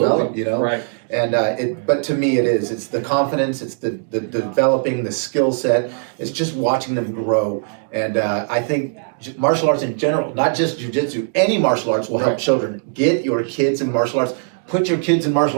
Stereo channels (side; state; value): left; silent; 66 dB below the other